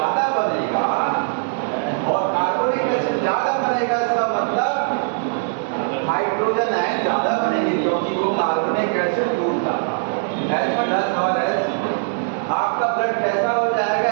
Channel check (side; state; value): left; silent; 65 dB below the other